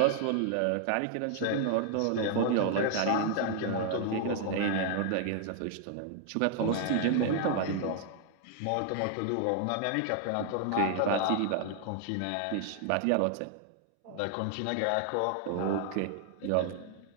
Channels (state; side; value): different; both; correlation 0.00